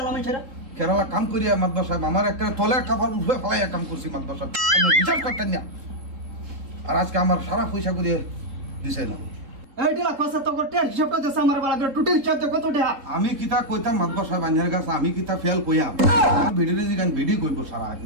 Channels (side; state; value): left; late; 3.8 ms